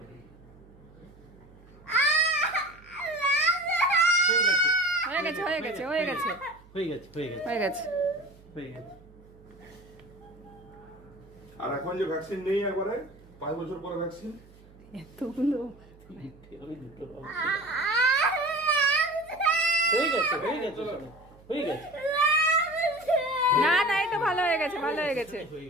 হয়ে যাবে। হয়ে গেছে হয়ে গেছে হয়ে গেছে হয়ে গেছে হয়ে গেছে হয়ে গেছে। হয়ে গেছে। আর এখন যে ভ্যাকসিন নেই একবারে 5 বছর পরে ভ্যাকসিন, এতগুলো আমি দুটো হয়ে গেছে হয়ে গেছে হয়ে গেছে না না, এই তো ভালো হয়ে গেছে ভালো হয়ে গেছে। হয়ে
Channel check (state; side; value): noise; right; hum, 24 dB below the sound